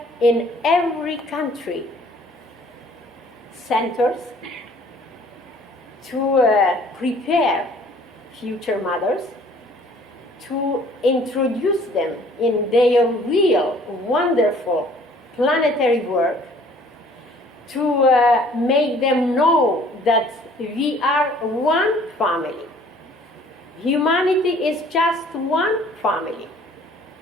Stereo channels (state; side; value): normal; both; correlation 0.55